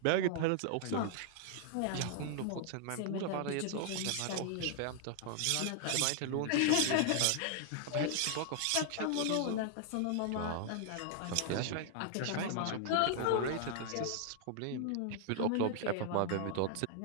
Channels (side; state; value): both; different; correlation 0.00